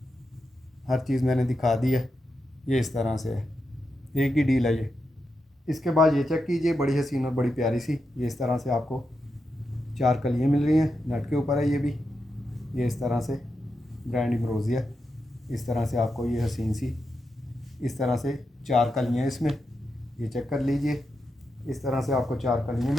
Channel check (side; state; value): both; normal; correlation 0.87